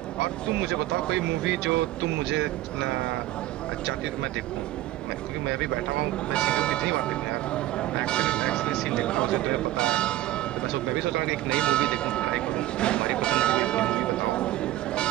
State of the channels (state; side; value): quieter; left; 15.2 dB